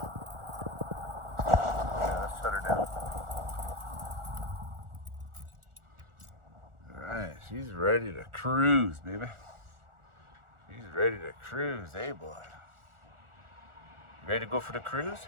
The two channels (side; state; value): left; late; 1.4 ms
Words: Yeah, let's shut her down. Alright, she's ready to cruise, baby. She's ready to cruise, eh, boy? Ready to go for the cruise?